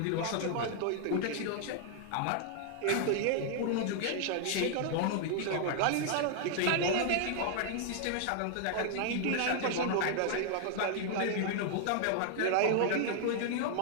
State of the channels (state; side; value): different; both; correlation 0.00